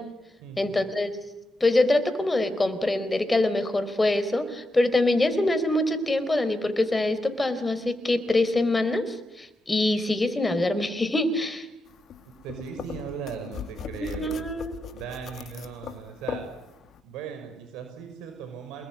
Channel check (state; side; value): normal; both; correlation 0.86